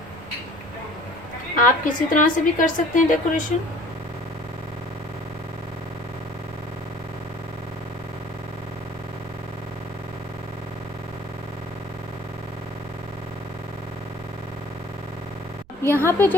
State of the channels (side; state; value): right; noise; rumble, 24 dB below the sound